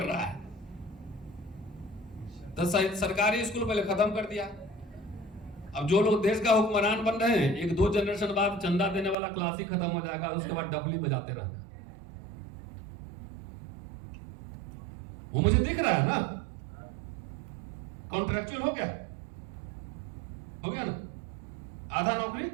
रहा है, तो सरकारी स्कूल पहले खत्म कर दिया। अब जो लोग देश का हुक्मरान बन रहे हैं, 1-2 जनरेशन बाद चंदा देने वाला क्लास ही खत्म हो जाएगा, उसके बाद डफली बजाते रहना। वो मुझे दिख रहा है ना, कॉन्ट्रैक्चुअल हो गया ना, आधा नौकरी।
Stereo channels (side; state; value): left; drops out; at 9.2 s